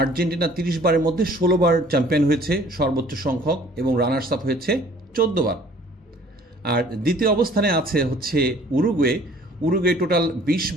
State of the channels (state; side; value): normal; both; correlation 0.54